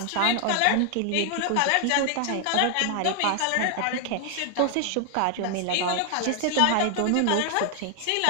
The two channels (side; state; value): both; different; correlation 0.00